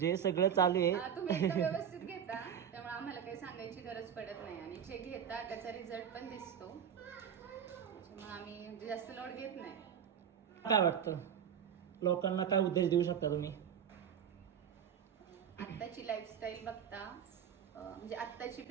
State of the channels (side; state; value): left; quieter; 8.5 dB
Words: सगळं चालू आहे. तुम्ही एकदम व्यवस्थित घेता त्यामुळे आम्हाला काही सांगायची गरज पडत नाही आणि जे घेता त्याचा रिझल्ट पण दिसतो, मग आम्ही जास्त लोड घेत नाही. काय वाटतं, लोकांना काय उपदेश देऊ शकता तुम्ही? आत्ताची लाईफस्टाईल बघता म्हणजे आत्ताची